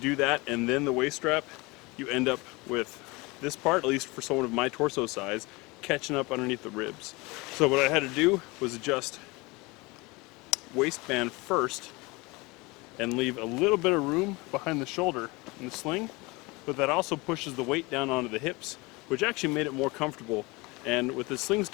that and then the waist strap, you end up with this part, at least for someone of my torso size, catching up underneath the ribs. So what I had to do was adjust waistband first and leave a little bit of room behind the shoulder in the sling, but that also pushes the weight down onto the hips, which actually made it more comfortable. And with the sling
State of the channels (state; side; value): quieter; right; 24.6 dB